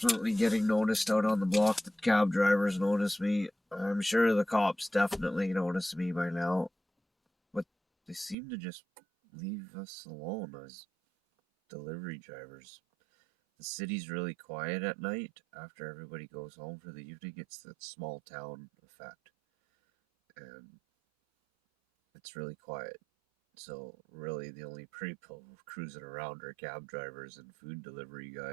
getting noticed out on the block. The cab drivers notice me. I'm sure the cops definitely notice me by now. But they seem to just leave us alone as delivery drivers. The city's really quiet at night after everybody goes home for the evening. It's that small town effect. And it's really quiet. So really the only people cruising around are cab drivers and food delivery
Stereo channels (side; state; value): left; drops out; at 8.3 s